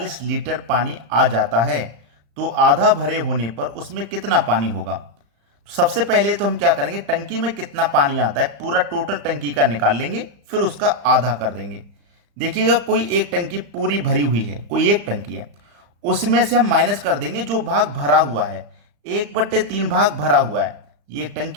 लीटर पानी आ जाता है तो आधा भरे होने पर उसमें कितना पानी होगा। सबसे पहले तो हम क्या करेंगे, टंकी में कितना पानी आता है पूरा टोटल टंकी का निकाल लेंगे, फिर उसका आधा कर देंगे। देखिएगा, कोई एक टंकी पूरी भरी हुई है, कोई एक टंकी है, उसमें से हम माइनस कर देंगे जो भाग भरा हुआ है। 1/3 भाग भरा हुआ है, ये एक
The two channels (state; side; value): late; left; 35 ms